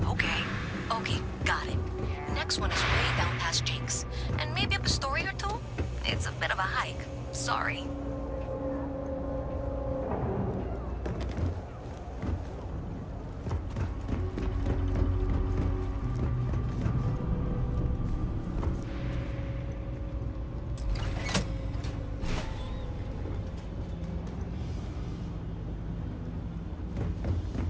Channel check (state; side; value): identical; both; correlation 1.00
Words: okay. Okay, got it. Next one is way down past Jake's, and maybe up a story or two? It's a bit of a hike. Sorry.